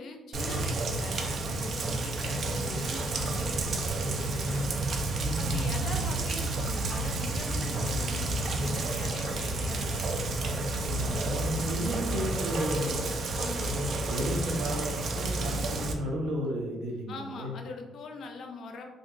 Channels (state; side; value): normal; both; correlation 0.70